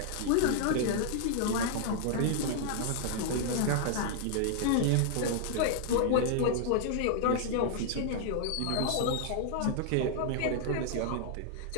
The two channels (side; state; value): both; different; correlation -0.01